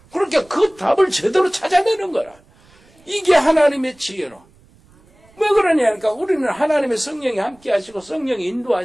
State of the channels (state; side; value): noise; right; rumble, 30 dB below the sound